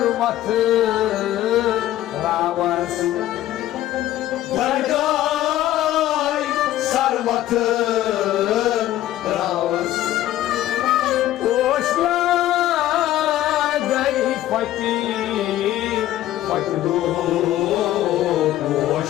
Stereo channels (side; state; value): right; quieter; 13.7 dB